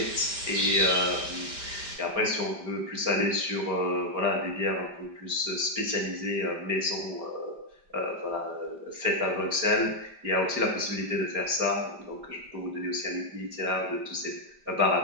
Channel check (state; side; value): late; left; 5.0 ms